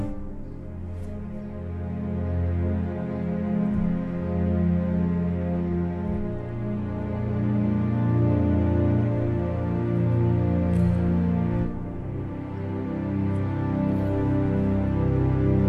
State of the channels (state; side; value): identical; both; correlation 1.00